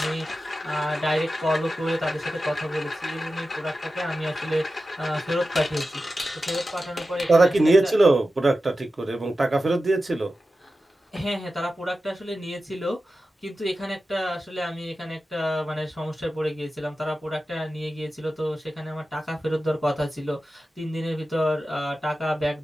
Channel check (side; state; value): both; normal; correlation 0.93